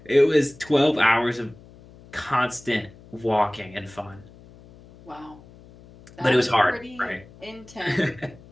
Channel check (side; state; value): left; noise; hum, 22 dB below the sound